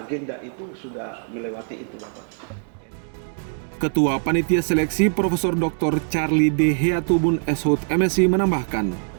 itu sudah melewati itu, Bapak. Ketua Panitia Seleksi Profesor Dr. Charlie D. Heatubun SHUT MSI menambahkan,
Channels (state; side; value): silent; left; digital silence